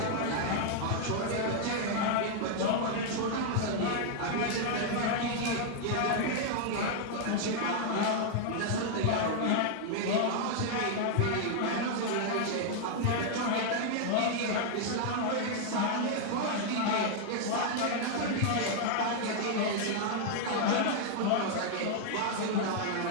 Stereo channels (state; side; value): different; both; correlation 0.00